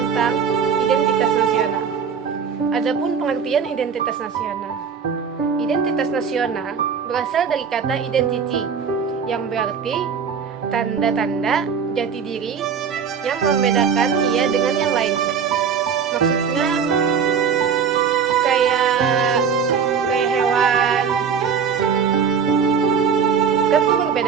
identitas nasional. Adapun pengertian identitas nasional. Identitas nasional berasal dari kata identity yang berarti tanda-tanda jati diri yang membedakan ia dengan yang lainnya. Maksudnya kayak hewan kan tuh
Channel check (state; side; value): quieter; left; 6.7 dB